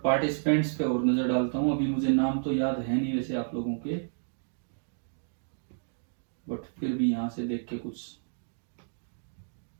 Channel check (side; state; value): left; silent; digital silence